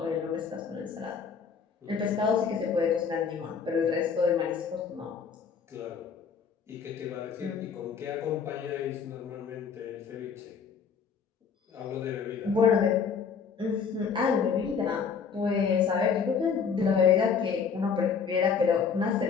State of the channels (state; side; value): quieter; right; 6.2 dB